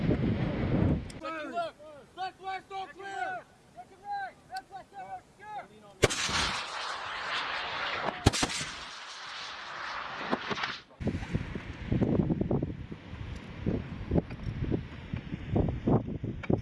Left, left, left! Blast all clear!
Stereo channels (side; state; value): both; identical; correlation 1.00